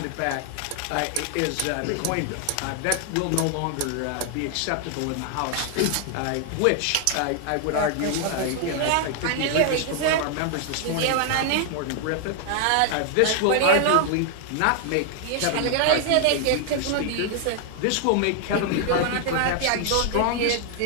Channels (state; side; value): different; both; correlation 0.00